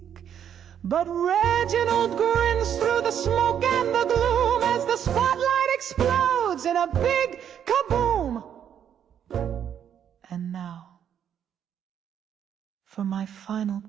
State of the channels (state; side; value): quieter; left; 9.0 dB